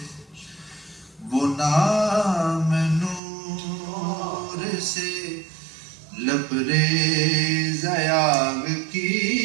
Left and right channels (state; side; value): drops out; left; at 3.2 s